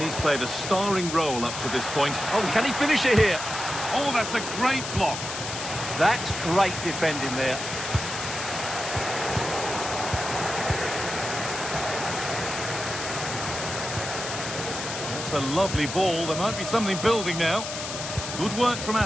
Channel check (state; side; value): noise; left; hiss, 6 dB below the sound